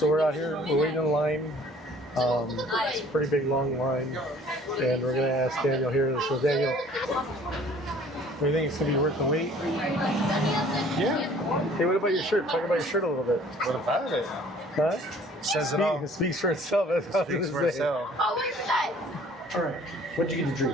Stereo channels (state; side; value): normal; both; correlation 0.54